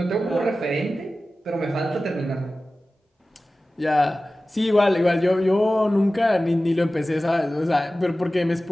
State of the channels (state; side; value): normal; both; correlation 0.96